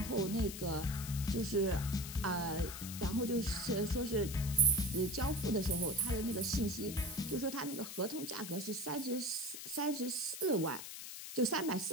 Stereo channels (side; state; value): left; noise; hiss, 9 dB below the sound